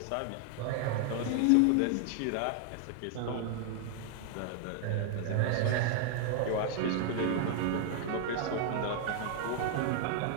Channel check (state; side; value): different; both; correlation 0.00